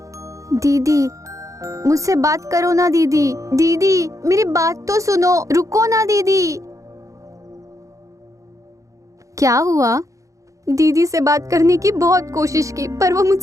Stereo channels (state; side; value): late; left; 0.16 ms